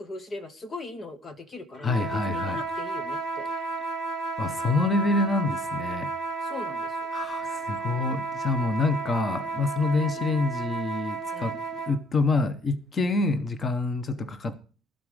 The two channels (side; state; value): both; normal; correlation 0.60